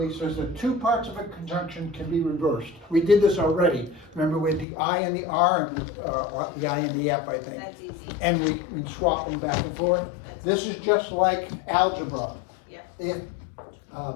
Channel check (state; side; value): drops out; right; at 4.7 s